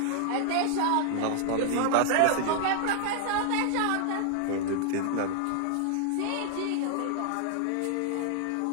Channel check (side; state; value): both; different; correlation 0.00